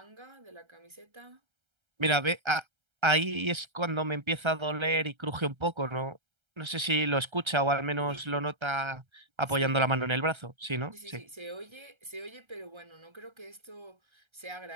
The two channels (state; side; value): late; left; 1.3 ms